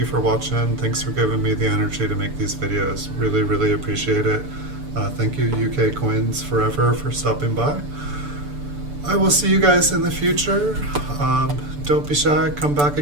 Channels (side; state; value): left; late; 6.9 ms